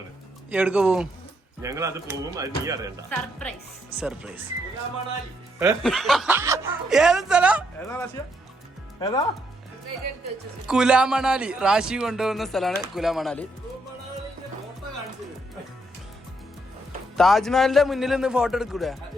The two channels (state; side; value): normal; both; correlation 0.75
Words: എവിടേക്ക് പോവും? ഞങ്ങൾ അത് പോകും, അത് നീ അറിയണ്ട. സർപ്രൈസ്. ഏതാ? കുലാമണാലി. റാശി കൊണ്ടുപോകുന്ന സ്ഥലമാണ് കുലാമണാലി. താജ്മഹലിന്റെ മുന്നിൽ നിന്ന് ഫോട്ടോ എടുക്കൂടെ?